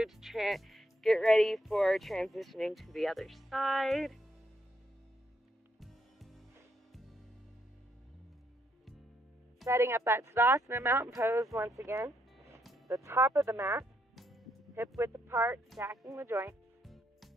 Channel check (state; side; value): normal; both; correlation 0.75